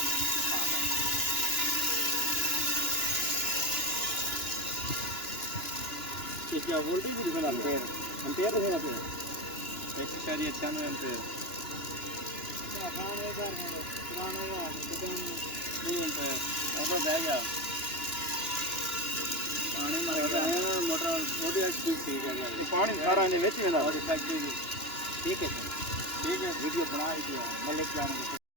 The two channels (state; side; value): late; right; 2.9 ms